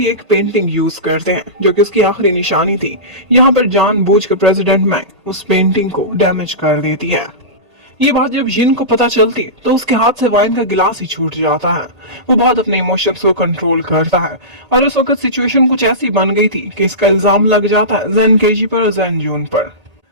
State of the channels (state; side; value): late; left; 1.8 ms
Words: एक पेंटिंग यूज करते हैं जो कि उसकी आखिरी निशानी थी। यहाँ पर जानबूझकर प्रेसिडेंट मैंग उस पेंटिंग को डैमेज कर देती है। ये बात जब जिन को पता चलती है तो उसके हाथ से वाइन का गिलास ही छूट जाता है। वो बहुत अपने इमोशंस को कंट्रोल करता है और उस वक्त सिचुएशन कुछ ऐसी बन गई थी कि इसका इल्जाम लग जाता है जैन केजी पर और जैन जून पर।